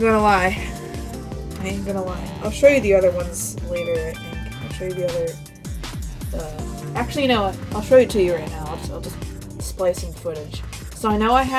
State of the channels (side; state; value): both; identical; correlation 1.00